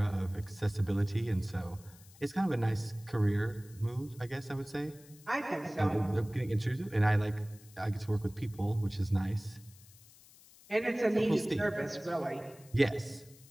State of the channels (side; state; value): left; noise; hiss, 23 dB below the sound